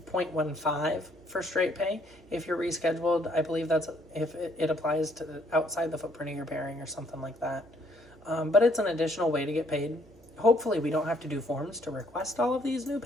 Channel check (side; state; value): right; noise; hum, 25 dB below the sound